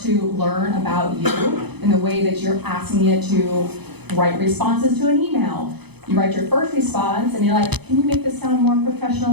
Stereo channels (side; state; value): left; late; 0.98 ms